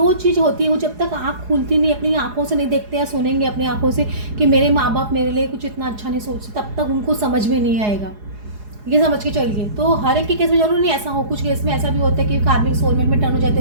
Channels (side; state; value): left; late; 4.8 ms